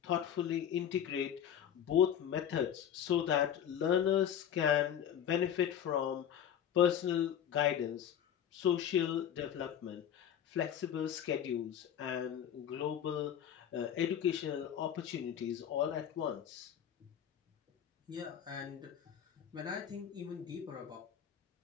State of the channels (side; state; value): right; quieter; 9.4 dB